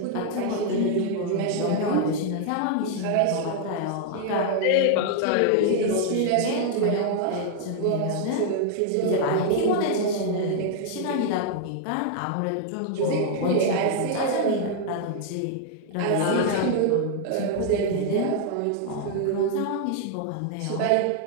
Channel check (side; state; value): both; different; correlation 0.00